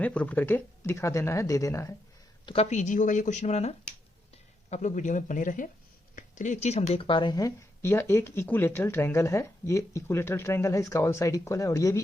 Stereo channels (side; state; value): both; normal; correlation 0.82